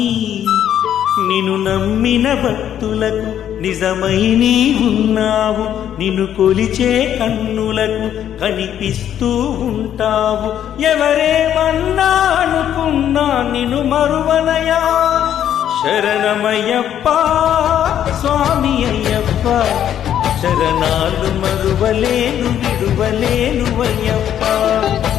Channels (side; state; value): right; quieter; 10.3 dB